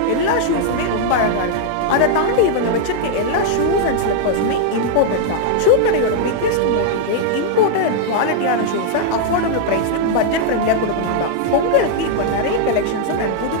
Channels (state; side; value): different; both; correlation -0.01